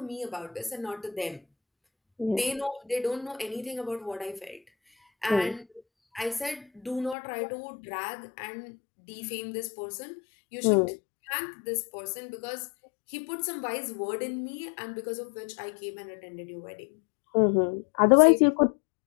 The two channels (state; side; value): drops out; right; at 7.2 s